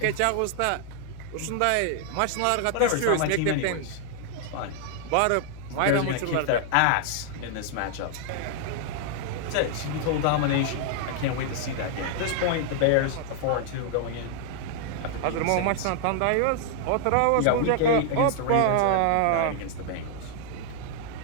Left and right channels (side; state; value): both; different; correlation 0.00